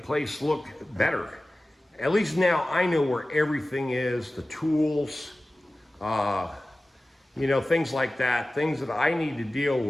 look better. At least now I know where everything is, the tools, things like that, things that I need to deal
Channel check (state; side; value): normal; both; correlation 0.96